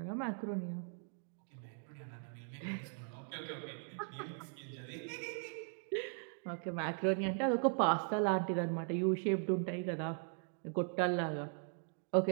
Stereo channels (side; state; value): left; silent; 52 dB below the other